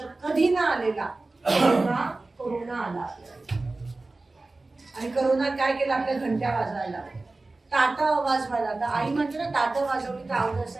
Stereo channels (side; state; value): left; quieter; 3.2 dB